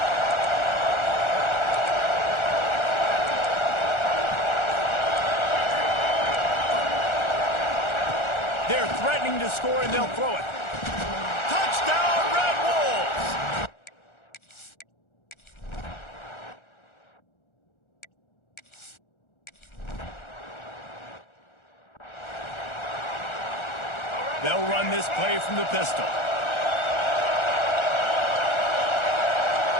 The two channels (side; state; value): right; late; 1.4 ms